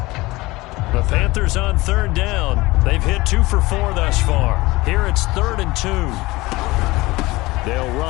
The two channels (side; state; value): right; quieter; 20.7 dB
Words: The Panthers on 3rd down. They've hit 2 for 4 thus far. Here it's 3rd and 2. They'll